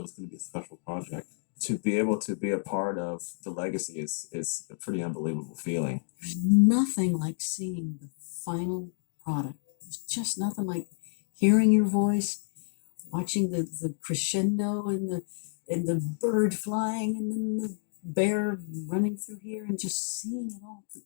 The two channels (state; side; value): silent; right; digital silence